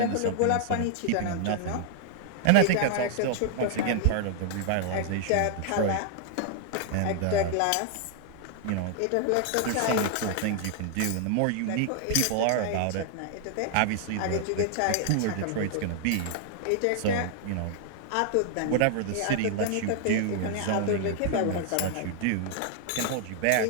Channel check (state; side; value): different; both; correlation 0.00